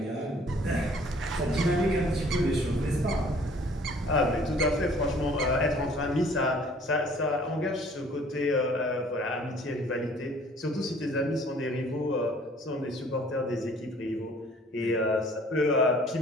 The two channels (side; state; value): both; normal; correlation 0.55